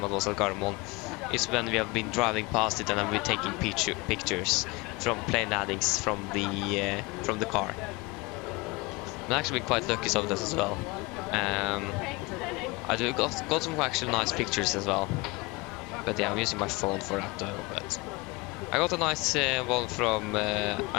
I was at Gardermoen, is when we have been driving past it and I've been taking pictures from plane landings from the car. I've actually been quite lucky some of this as well. I got some actually nice pictures as well. But yeah, I'm using my phone for that though. But I got a nice one from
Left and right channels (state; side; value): quieter; right; 24.5 dB